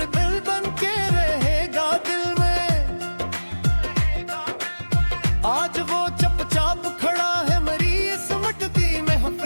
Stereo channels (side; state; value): both; inverted; correlation -1.00